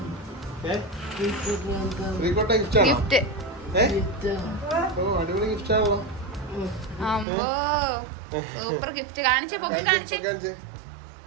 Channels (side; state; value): left; drops out; at 7.2 s